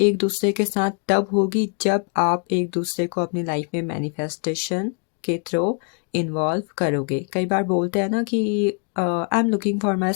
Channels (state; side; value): quieter; right; 39.8 dB